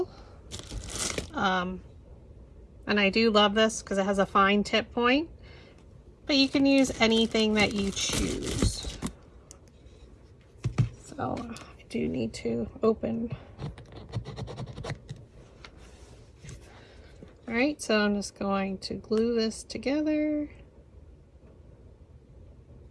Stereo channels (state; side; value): identical; both; correlation 1.00